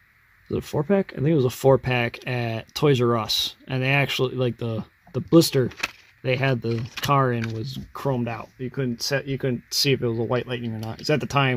was it a 4-pack? I think it was a 4-pack at Toys R Us, and they actually, like, the blister they had the car in was chromed out. You couldn't see if it was a White Lightning or not. Because at the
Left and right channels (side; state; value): both; identical; correlation 1.00